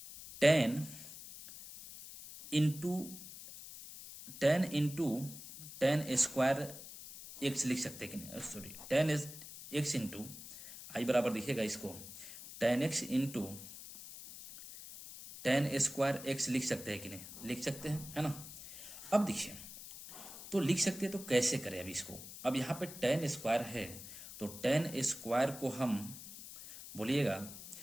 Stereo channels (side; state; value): left; noise; hiss, 13 dB below the sound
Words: 10 इंटू 10 स्क्वायर एक्स लिख सकते हैं कि नहीं, सॉरी 10 एक्स इंटू आई बराबर देखिएगा इसको 10x इंटू 10 स्क्वायर एक्स लिख सकते हैं कि नहीं, लिख सकते हैं, है ना। अब देखिए तो लिख सकते हैं, तो कैसे करें अभी इसको। अब यहाँ पे 10 स्क्वायर है, तो 10 स्क्वायर को हम बोलिएगा